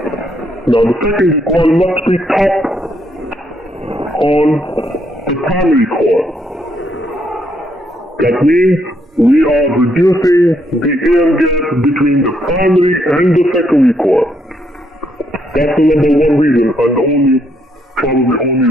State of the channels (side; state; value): both; normal; correlation 0.74